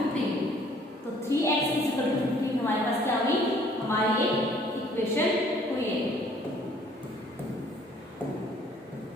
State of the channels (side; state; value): both; normal; correlation 0.58